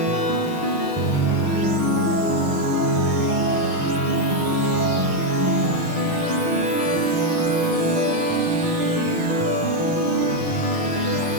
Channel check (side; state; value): left; late; 6.4 ms